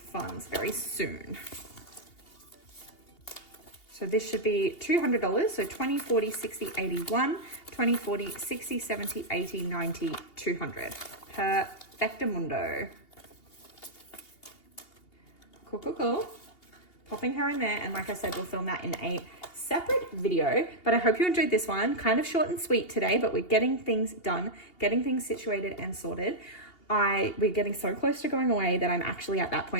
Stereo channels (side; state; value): right; late; 2.8 ms